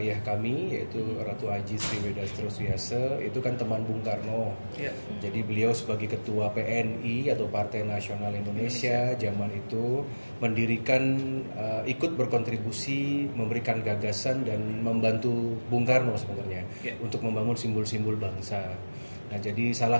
kami yaitu Ratu Aji Sri Wedastro Suyase itu kan teman Bung Karno. Jadi beliau sebagai ketua PNI atau Partai Nasional Indonesia zaman itu mendirikan, ikut berkontribusi, memberikan gagasan dan membantu Bung Karno sebenarnya untuk membangun simbol-simbol bangsa. Nah, jadi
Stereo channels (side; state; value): both; inverted; correlation -1.00